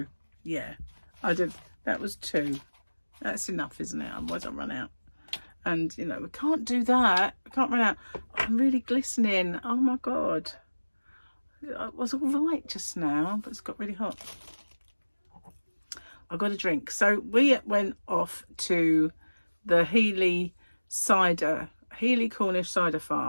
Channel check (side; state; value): both; inverted; correlation -1.00